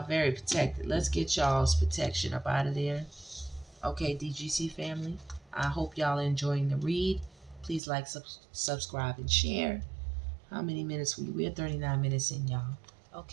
very protected. Let's get y'all's protection up out of there. Okay, DGC family. I hope y'all are enjoying the read. Please like, subscribe, and share. How many minutes we're 39 minutes in, y'all.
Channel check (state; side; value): drops out; left; at 7.8 s